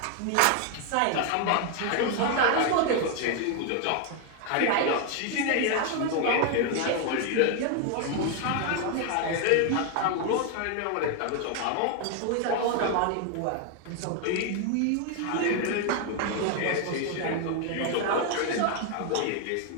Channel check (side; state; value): both; different; correlation 0.01